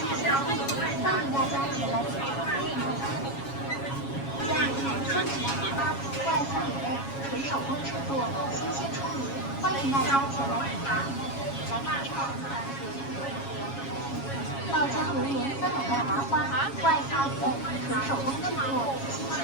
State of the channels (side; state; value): right; late; 7.3 ms